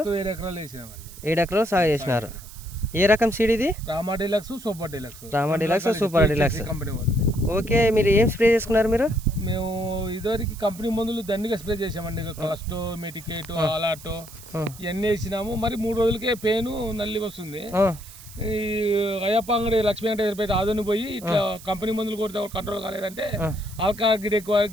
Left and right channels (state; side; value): noise; right; hiss, 18 dB below the sound